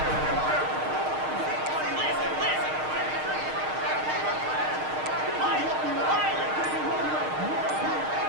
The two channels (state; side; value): late; left; 6.5 ms